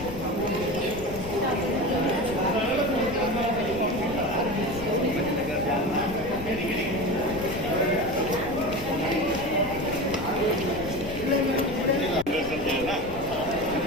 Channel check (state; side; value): noise; left; rumble, 12 dB below the sound